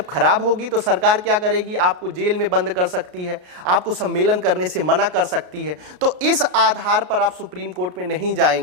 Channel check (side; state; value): left; late; 33 ms